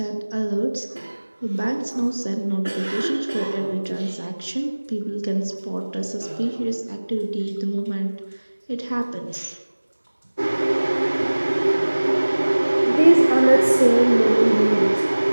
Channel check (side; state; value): both; inverted; correlation -1.00